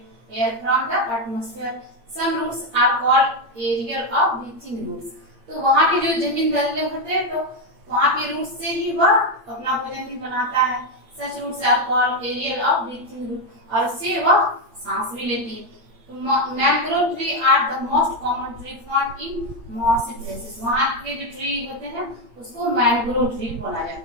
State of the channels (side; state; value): left; late; 8.7 ms